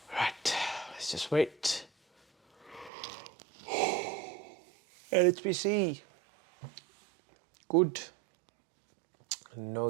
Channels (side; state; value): left; drops out; at 2.9 s